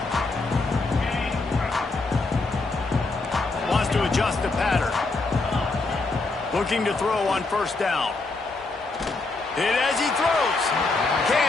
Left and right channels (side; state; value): right; quieter; 3.5 dB